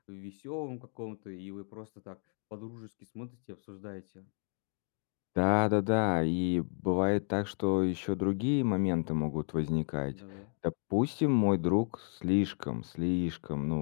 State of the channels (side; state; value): right; silent; 55 dB below the other